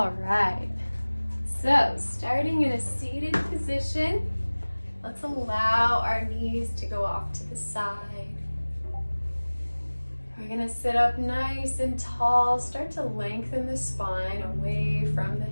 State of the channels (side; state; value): both; inverted; correlation -1.00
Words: right, so starting in a seated position, let's allow our knees to go off to the side. We're gonna sit up nice and tall, start to lengthen the spine away from the